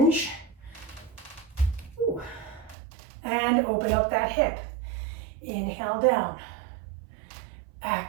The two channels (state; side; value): drops out; left; at 2.8 s